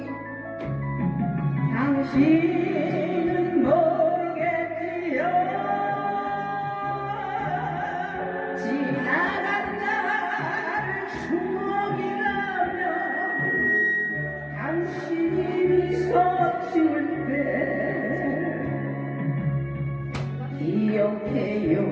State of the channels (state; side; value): identical; both; correlation 1.00